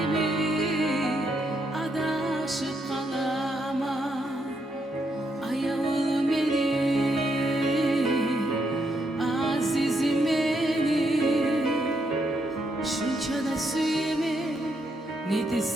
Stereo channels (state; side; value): normal; both; correlation 0.78